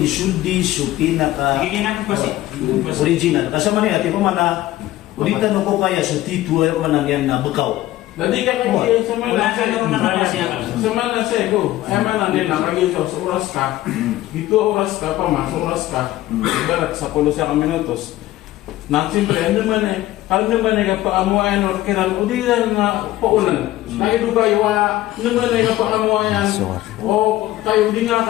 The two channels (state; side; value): quieter; right; 15.5 dB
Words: suldi so pinaka Giginan ko kasi. original. Kasama ni ate ko mana ulitan ko kaya so tituwa man yan na bukaw. Jadi kan lagi Wala ka na naman na siya. Semana saya go, emang nanti nak lagi so uras ka, itu uras ka pa mas uras ka, ibarat 10 minutos. Nanti siyempre ano man ka paamuan or kiran udiran na paunan. Nakiduga iwa naman ka paamuan o kayo di nga